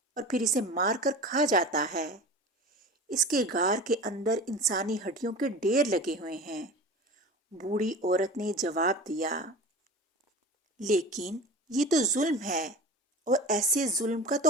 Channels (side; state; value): both; normal; correlation 0.34